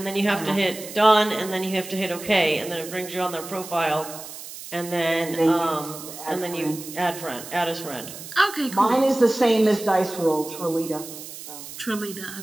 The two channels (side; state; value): right; noise; hiss, 13 dB below the sound